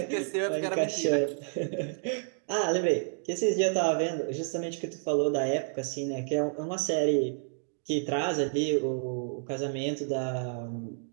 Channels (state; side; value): silent; left; digital silence